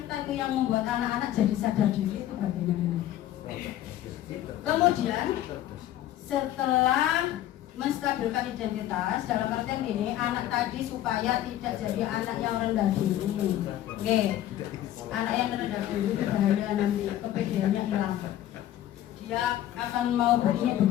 itu yang membuat anak-anak jadi sadar diri itu bagaimana. Kemudian setelah menstabilkan identitas dalam artian ini anak tadi supaya tidak jadi anak yang rendah diri. Oke. Anak yang rendah diri itu bahaya nanti kepedeannya hilang. Dia akan mau begini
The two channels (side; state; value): right; quieter; 12.9 dB